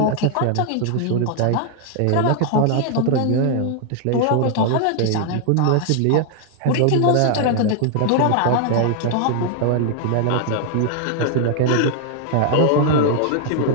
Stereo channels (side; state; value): both; different; correlation 0.00